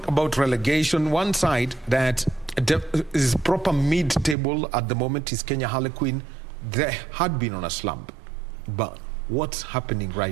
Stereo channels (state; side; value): drops out; left; at 4.4 s